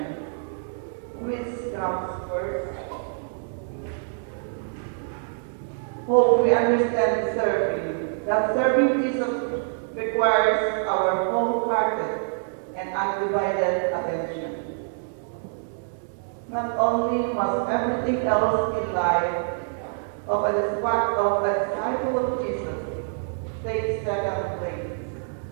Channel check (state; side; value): silent; left; digital silence